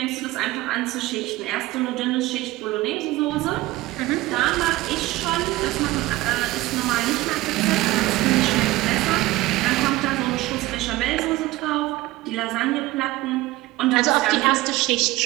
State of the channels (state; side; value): quieter; left; 18.3 dB